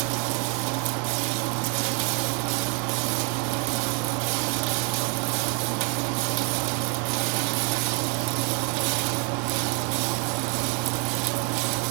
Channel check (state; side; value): quieter; left; 34.0 dB